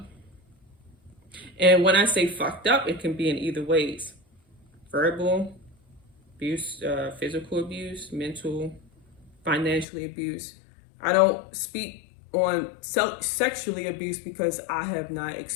And when I say fucked up, it can be in either ways. Verbal abuse, physical abuse, mental, financially abuse. I don't speak on sexually abuse because I have not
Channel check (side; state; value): right; drops out; at 9.9 s